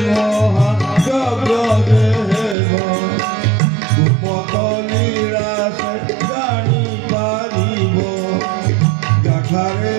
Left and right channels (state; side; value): drops out; left; at 2.6 s